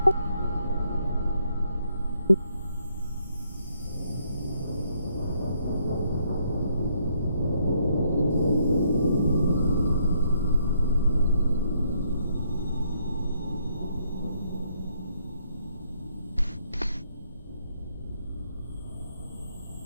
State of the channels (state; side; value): inverted; both; correlation -0.72